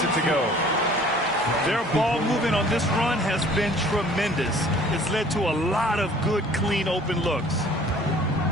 it to go. Their ball movement on this run has been tremendous. It's led to a lot of good, clean, open looks.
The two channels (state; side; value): normal; both; correlation 0.52